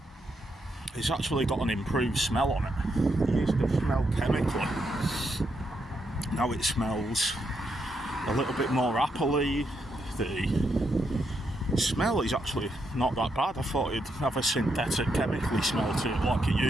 It's actually got an improved smell on it. It used to smell chemically. Now it smells a little bit more appley. The smell is actually not that bad. I thought it'd have a synthetic chemically smell to it like it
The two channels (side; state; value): both; normal; correlation 0.80